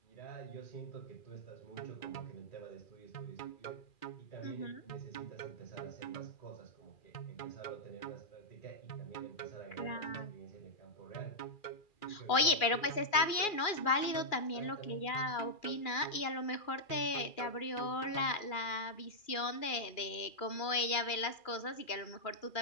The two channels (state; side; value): late; right; 2.4 ms